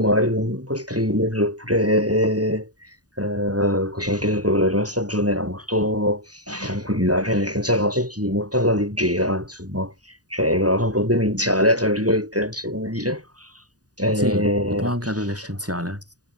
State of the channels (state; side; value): late; left; 0.68 ms